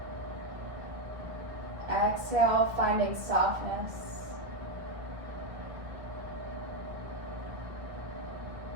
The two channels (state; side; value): late; left; 1.4 ms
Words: Exhale, finding softness.